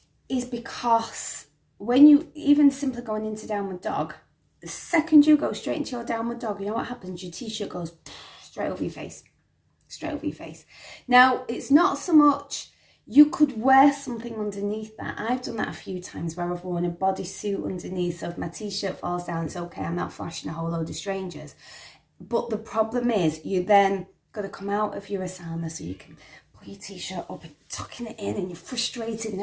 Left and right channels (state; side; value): identical; both; correlation 1.00